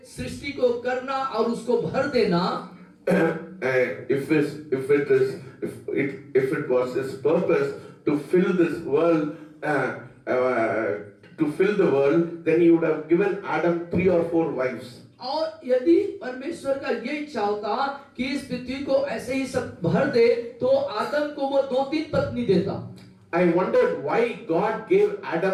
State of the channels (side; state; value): both; identical; correlation 1.00